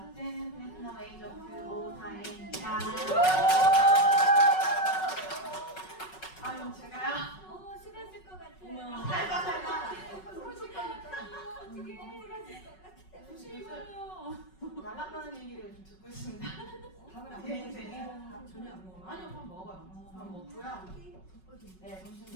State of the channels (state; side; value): late; right; 5.4 ms